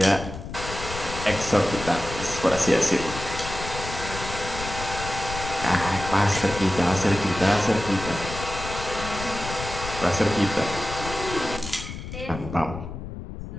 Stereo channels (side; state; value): left; noise; rumble, 9 dB below the sound